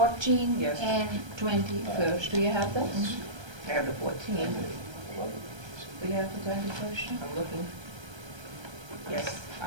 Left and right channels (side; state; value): left; late; 1.3 ms